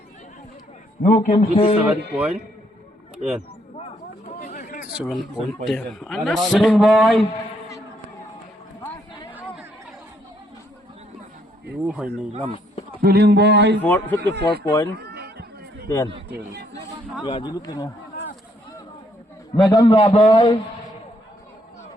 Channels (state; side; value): normal; both; correlation 0.71